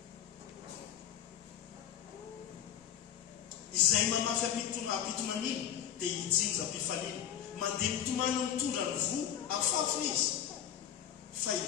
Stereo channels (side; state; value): right; quieter; 10.0 dB